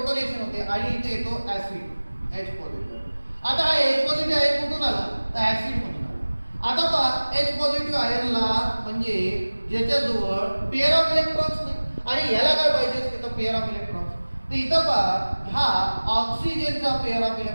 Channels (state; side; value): inverted; both; correlation -1.00